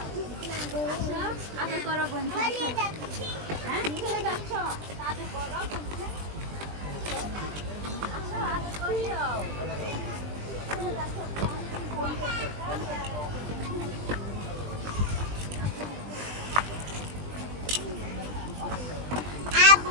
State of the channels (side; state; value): left; late; 20 ms